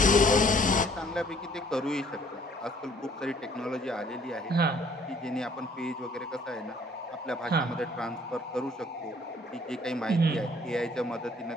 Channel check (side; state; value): both; normal; correlation 0.59